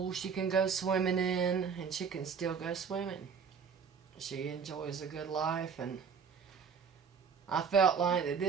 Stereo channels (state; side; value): quieter; left; 6.3 dB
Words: she can go swimming in, and she can still go swimming. She enjoys a good life, and I felt like that